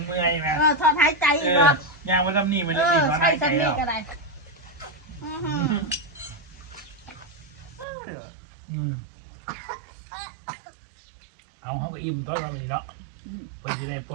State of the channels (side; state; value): left; drops out; at 7.9 s